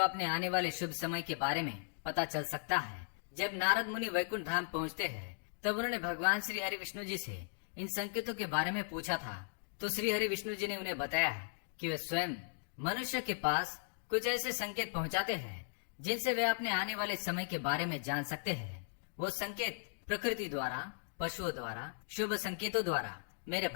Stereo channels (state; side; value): silent; right; digital silence